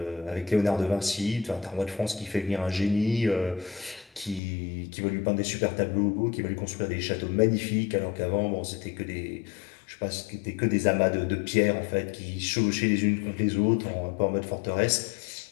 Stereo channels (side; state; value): right; drops out; at 4.4 s